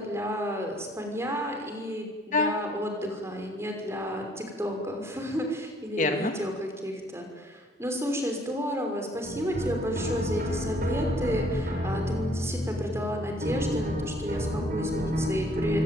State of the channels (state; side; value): normal; both; correlation 0.62